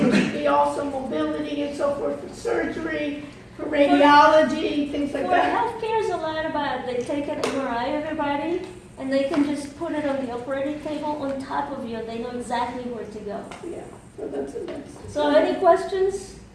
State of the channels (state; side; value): identical; both; correlation 1.00